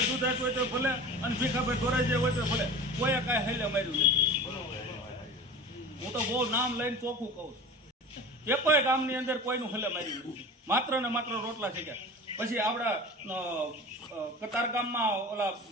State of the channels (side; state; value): both; normal; correlation 0.35